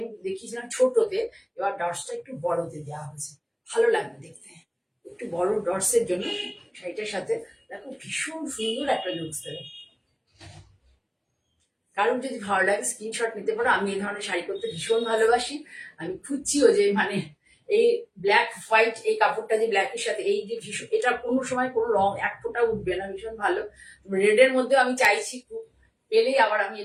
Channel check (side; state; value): both; identical; correlation 1.00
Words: দেখিয়েছিলাম ছোটতে, এবার ডটসটা একটু বড়তে দেওয়া হয়েছে, ভালো লাগবে দেখতে। একটু বড় ডটসের জন্য শাড়িটার সাথে দেখো ভীষণ সুন্দর একটা লুকস দেবে। কারণ যদি ভালো লাগে স্ক্রিনশট নিতে পারো। আমি এই ধরনের শাড়ি করতে ভীষণ ভালোবাসি। আমি খুঁজছিও যে মানে এই ব্ল্যাক হোয়াইট এই কাপড়টা যে ব্ল্যাকের সাথে এই যে ভীষণ, এটা কোনো সময় কোনো রং এক ফোঁটা উঠবে না, ভীষণ ভালো। রেডের মধ্যে আমি চাইছি খুব, পেলেই আবার আমি